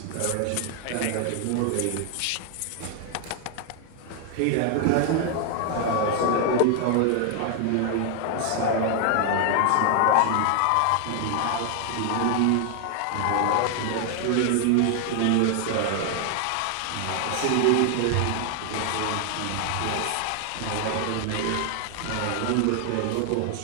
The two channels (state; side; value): different; both; correlation 0.00